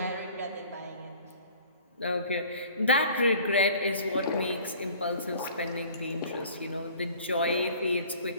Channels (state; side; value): inverted; both; correlation -0.49